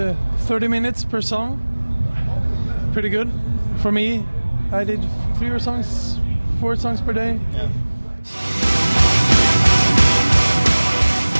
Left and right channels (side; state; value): both; inverted; correlation -1.00